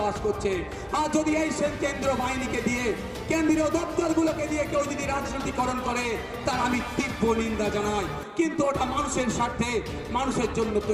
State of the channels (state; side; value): identical; both; correlation 1.00